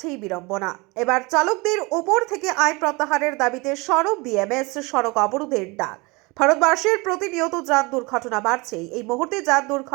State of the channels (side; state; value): left; quieter; 26.2 dB